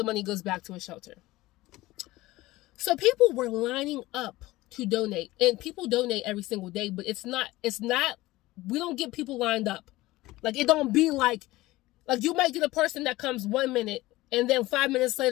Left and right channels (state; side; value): quieter; right; 18.4 dB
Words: money goes back to a shelter. So people were lining up to donate, and people donate every single day, but it's not we don't get people lined up. It don't be you might get a person that comes 1 minute, and then 5 minutes